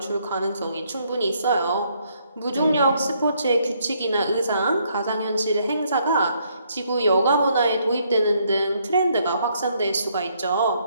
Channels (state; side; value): inverted; both; correlation -0.71